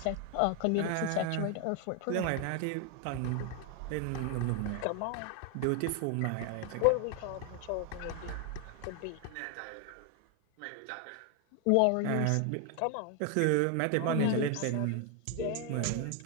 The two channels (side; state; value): both; different; correlation 0.01